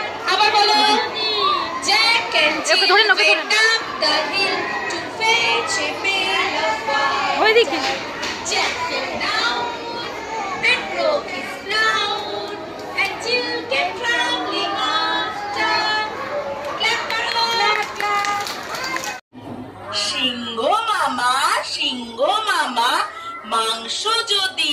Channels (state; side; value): identical; both; correlation 1.00